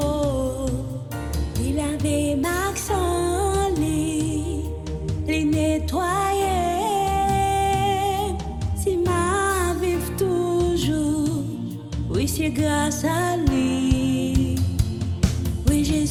Il avait Maxon, il nettoyé. Si ma vive toujours, oui, c'est grâce à lui. Oui,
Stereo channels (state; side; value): identical; both; correlation 1.00